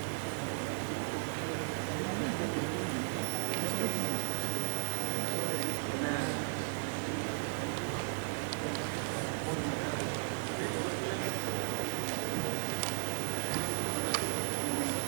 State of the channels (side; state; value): left; silent; digital silence